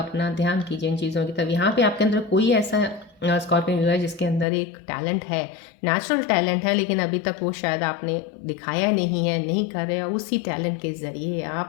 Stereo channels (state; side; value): drops out; right; at 4.5 s